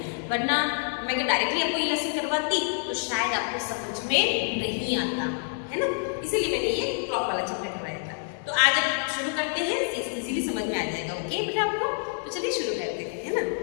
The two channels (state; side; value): silent; right; digital silence